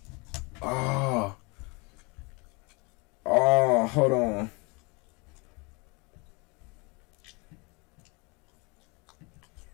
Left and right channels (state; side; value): quieter; right; 29.3 dB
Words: Oh, hold on.